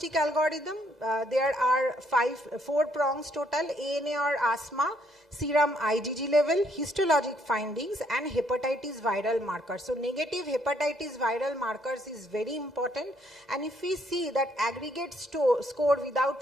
algorithm? There are 4 prongs total: ANA or asthma, serum IgG level, histologic findings, and hepatitis viral markers. So negative hepatitis viral markers is very important, and if we see that aggregate score without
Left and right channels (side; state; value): both; normal; correlation 0.69